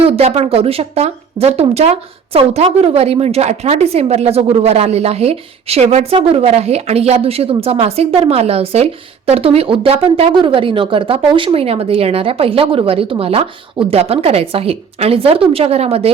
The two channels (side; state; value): left; quieter; 6.5 dB